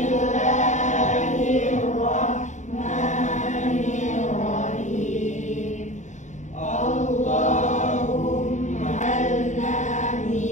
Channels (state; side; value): late; right; 0.35 ms